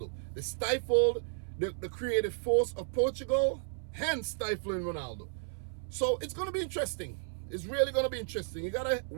They stifled the creative force of Portugal, hence stifling Ronaldo. So it's going to be interesting. It's really going to be interesting. You got to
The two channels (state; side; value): silent; left; 56 dB below the other